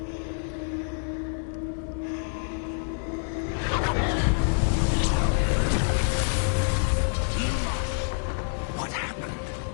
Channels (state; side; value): silent; right; digital silence